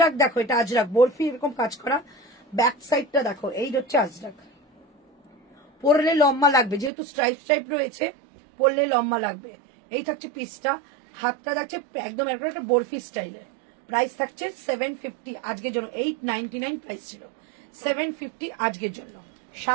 দেখো, এটা আজরাক বরফি এরকম কাজ করা, ব্যাক সাইডটা দেখো, এই হচ্ছে আজরাক। পরলে লম্বা লাগবে, যেহেতু স্ট্রাইপ রয়েছে, পরলে লম্বা লাগবে। এই থাকছে পিসটা, হাতটা থাকছে একদম একটা বরফি স্টাইলে। প্রাইস থাকছে 750 আজকের জন্য, 899 প্রাইস ছিল, 750 আজকের জন্য।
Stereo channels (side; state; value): left; drops out; at 6.9 s